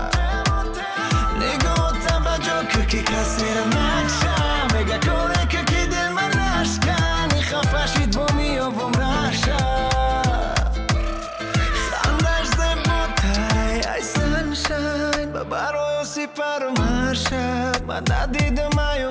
نگاه توجه که کسی را نکشم میگه کنه که دل من نشکنی خفشید با میابم رشم خندش زیباتره ای سنشن من برای سپر مرشم من ندیدم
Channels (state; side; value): identical; both; correlation 1.00